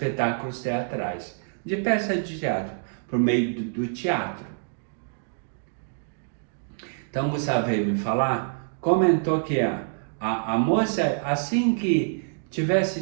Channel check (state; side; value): silent; left; digital silence